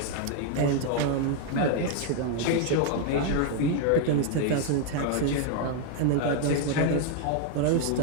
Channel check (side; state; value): both; different; correlation 0.00